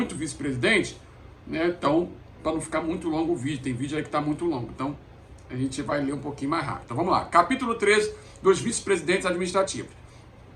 vice-presidente, né, então, para não ficar muito longo o vídeo, tem vídeo aí que está muito longo, então a gente vai ler um pouquinho mais rápido. Então vamos lá, capítulo 13, dos vice-presidentes administrativos.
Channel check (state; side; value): identical; both; correlation 1.00